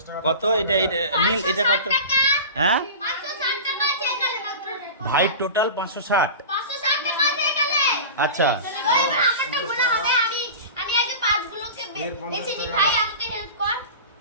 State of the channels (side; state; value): both; inverted; correlation -0.32